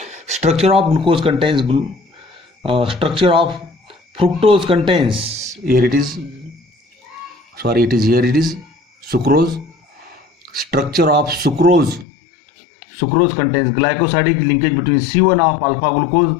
structure of glucose contains structure of fructose contains, here it is sucrose. Structure of sucrose contains glycosidic linkage between C1 of alpha glucose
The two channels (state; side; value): drops out; right; at 12.1 s